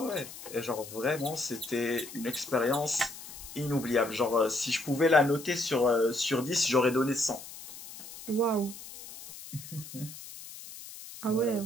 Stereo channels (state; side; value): noise; left; hiss, 14 dB below the sound